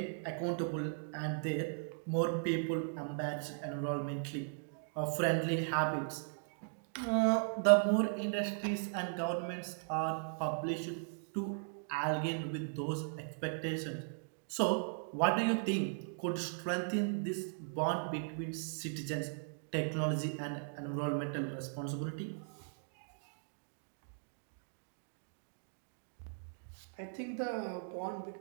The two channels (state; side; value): silent; left; digital silence